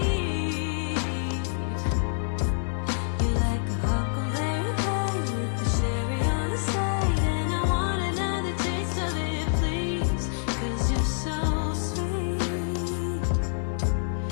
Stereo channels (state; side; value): silent; right; 60 dB below the other